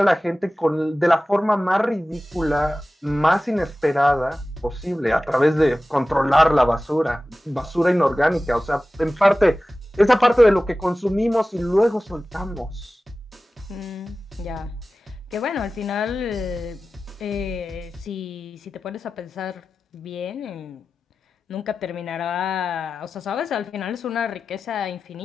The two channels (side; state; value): both; normal; correlation 0.95